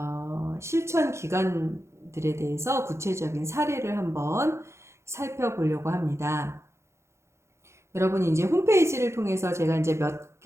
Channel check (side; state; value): left; late; 0.13 ms